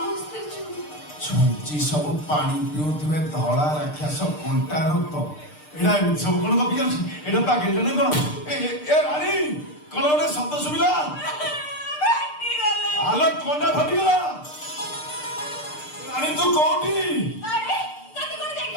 ଛୁଞ୍ଚି ସବୁ ପାଣି ପିଉଥିବେ ଧଳା ରାକ୍ଷସ କଣ୍ଟା ରକ୍ତ ଏଇଟା ଏମିତି ସବୁ କଣ ଗପି ଯାଉଛି? ଏଇଟା ପାଗେଲଟା ନା କଣ? ଏ ରାଣୀ କଣ ଗୋଟେ ଶବ୍ଦ ଶୁଭିଲା? ଆଲୋ କଣ୍ଟା ଫାଟିଗଲା। ରାଣୀ ତୁ କୋଉଠି?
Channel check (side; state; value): right; late; 6.7 ms